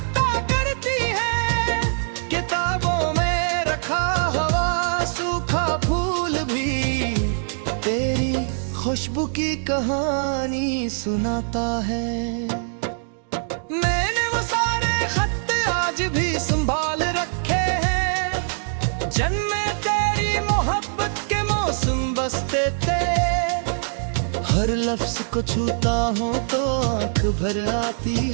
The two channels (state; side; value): silent; left; digital silence